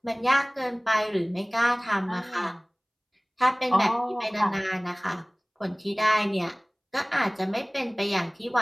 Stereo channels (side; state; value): both; identical; correlation 1.00